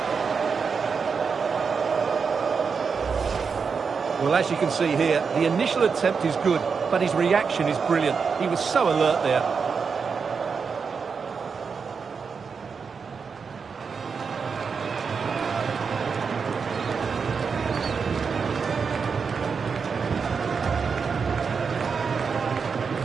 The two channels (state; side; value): quieter; left; 5.6 dB